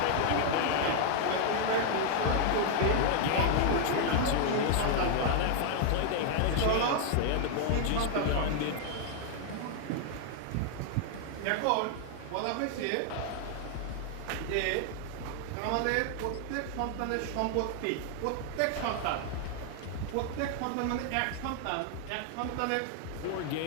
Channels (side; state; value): both; different; correlation 0.00